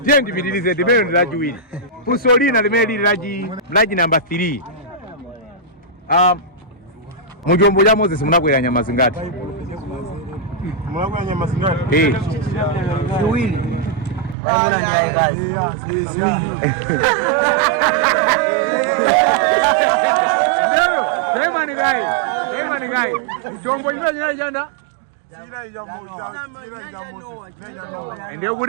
bidilizeni limene ndilajiwiri. Fusolina limene lili laji number 3. Mujombo ya Moses munakwera nyama zingati? Munakwera nyama zingati? Ziwili. Emani gai. Mujombo imeje jana? Ndio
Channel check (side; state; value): left; drops out; at 14.4 s